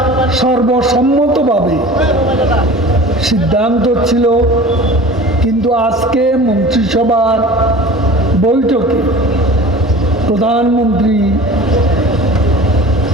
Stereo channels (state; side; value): normal; both; correlation 0.40